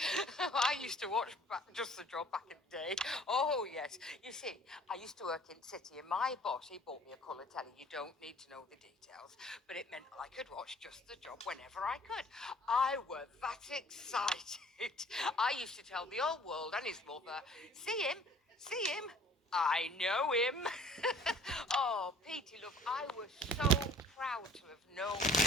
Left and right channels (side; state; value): both; normal; correlation 0.52